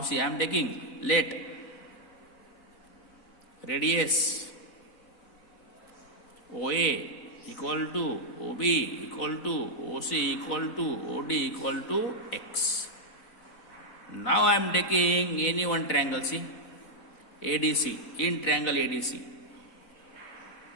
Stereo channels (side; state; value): right; late; 4.0 ms